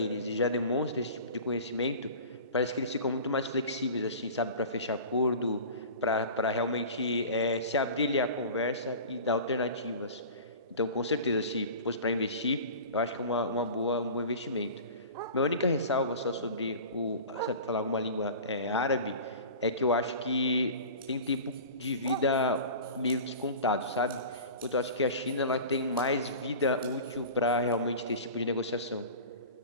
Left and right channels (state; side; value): inverted; both; correlation -0.37